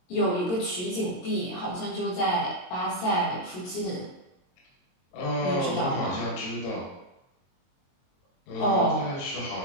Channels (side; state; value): right; late; 22 ms